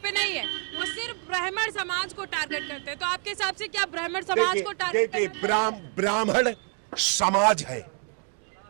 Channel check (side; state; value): left; quieter; 39.5 dB